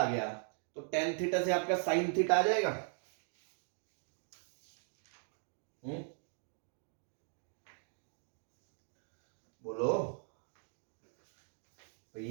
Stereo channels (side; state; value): left; silent; 52 dB below the other